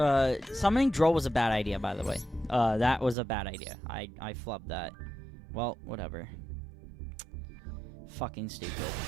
summoning Droll was a bad idea, by the way. That was a bad idea. I flubbed that. Well, whatever. Fucking stupid.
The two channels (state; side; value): drops out; left; at 3.2 s